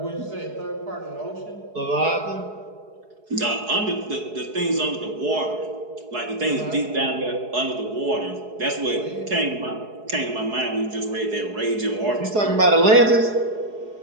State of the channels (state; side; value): late; left; 4.7 ms